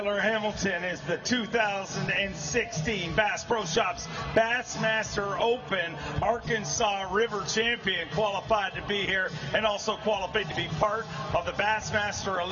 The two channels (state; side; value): identical; both; correlation 1.00